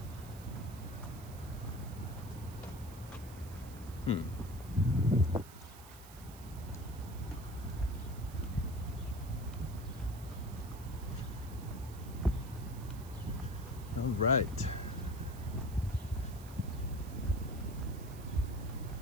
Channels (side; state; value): right; noise; hiss, 18 dB below the sound